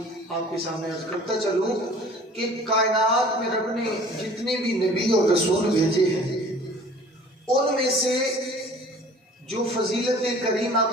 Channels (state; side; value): normal; both; correlation 0.48